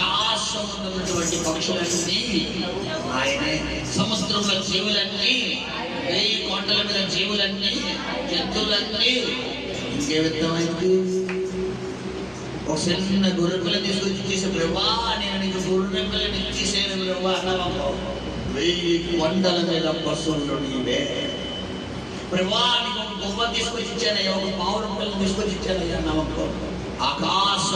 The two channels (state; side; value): identical; both; correlation 1.00